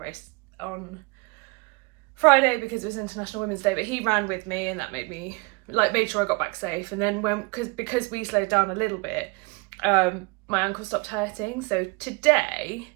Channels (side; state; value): left; quieter; 29.0 dB